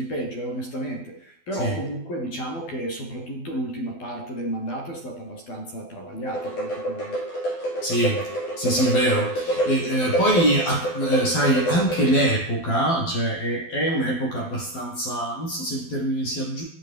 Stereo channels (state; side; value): late; right; 12 ms